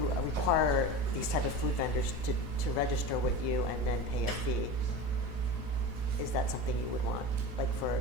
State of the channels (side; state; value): left; late; 5.1 ms